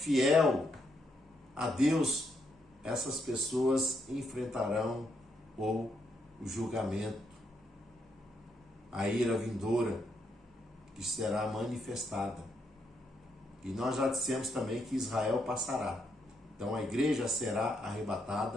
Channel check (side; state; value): both; normal; correlation 0.78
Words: a Deus, essas pessoas enfrentarão o julgamento, a ira vindoura que será manifestada. E nós já dissemos também que Israel passará. Então a igreja será